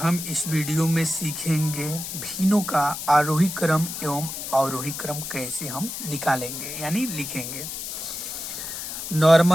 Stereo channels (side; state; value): left; noise; hiss, 7 dB below the sound